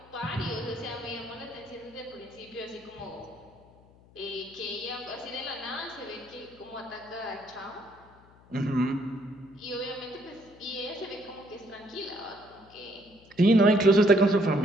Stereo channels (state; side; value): noise; left; hum, 26 dB below the sound